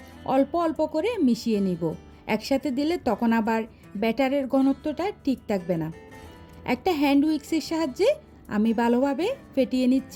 অল্প অল্প করে মিশিয়ে নিব। একসাথে দিলে তখন আবার ব্যাটারের ঘনত্বটা ঠিক থাকবে না। একটা হ্যান্ড উইক্সের সাহায্যে আমি ভালোভাবে ফেটিয়ে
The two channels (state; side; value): identical; both; correlation 1.00